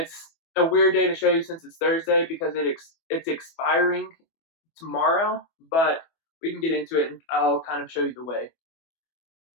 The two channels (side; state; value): right; late; 24 ms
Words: a weird day to show you since it's Thursday because it's expiring tomorrow, but we can get into it and I'll kind of show you the way.